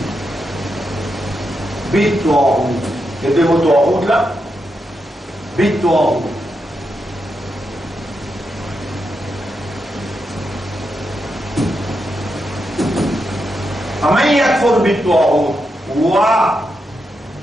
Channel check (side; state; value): both; normal; correlation 0.85